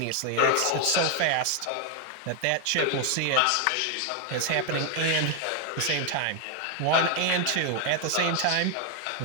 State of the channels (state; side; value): different; both; correlation 0.00